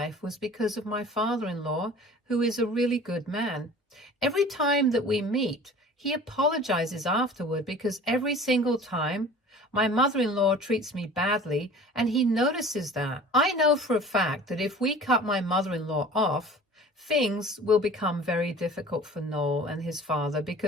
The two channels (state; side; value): normal; both; correlation 0.43